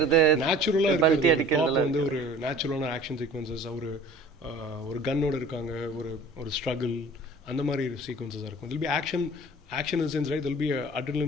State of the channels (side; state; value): both; normal; correlation 0.46